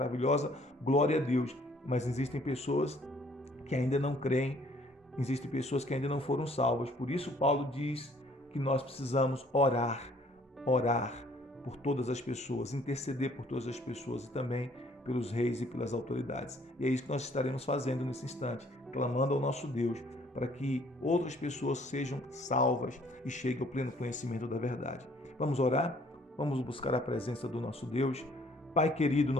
glória a Deus. Mas existem pessoas que ainda não creem, existem pessoas que ainda não foram salvas. Por isso Paulo diz que nós precisamos orar por todas as pessoas, interceder por todas as pessoas e também pelos reis e pelas autoridades. E é isso que nós estaremos fazendo nesse instante, clamando ao nosso Deus para que outras pessoas sejam salvas e cheguem ao pleno conhecimento da verdade. Vamos orar? Vamos buscar a presença do nosso Deus. Pai querido,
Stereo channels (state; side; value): normal; both; correlation 0.60